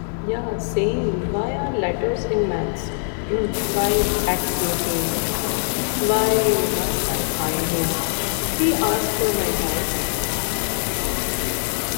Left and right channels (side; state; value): right; silent; 61 dB below the other